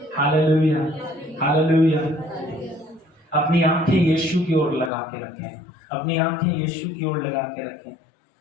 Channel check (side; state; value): right; drops out; at 4.9 s